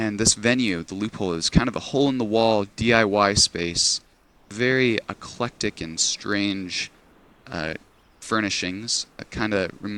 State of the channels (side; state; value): both; identical; correlation 1.00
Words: this venue, the Loophole, is kind of a hole-in-the-wall DIY space, very eclectic and strange uh, furnishings. It kind of